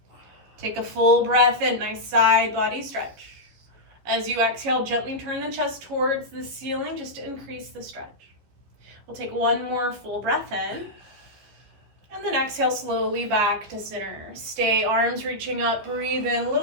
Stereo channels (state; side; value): late; left; 15 ms